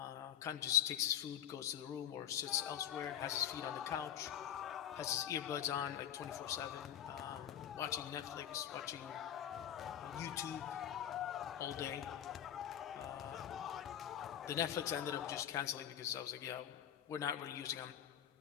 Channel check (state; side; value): quieter; right; 10.2 dB